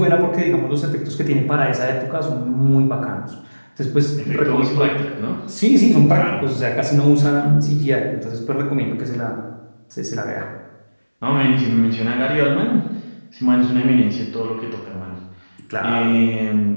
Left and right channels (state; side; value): inverted; both; correlation -1.00